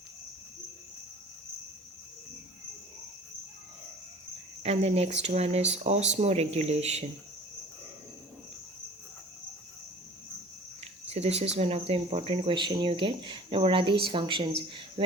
And the next one is osmoregulation. So this is one of the important question you get. Now what are these functions?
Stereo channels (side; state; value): both; normal; correlation 0.45